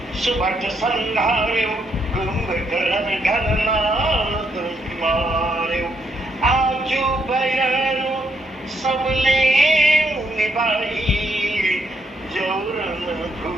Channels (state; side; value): normal; both; correlation 0.76